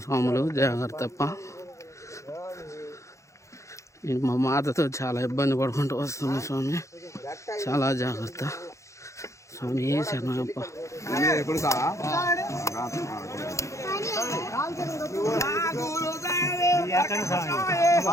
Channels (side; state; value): right; late; 0.15 ms